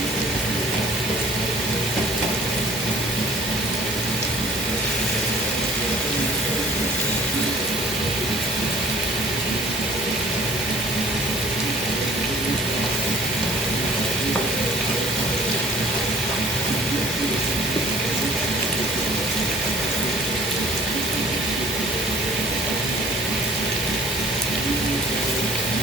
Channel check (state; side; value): normal; both; correlation 0.52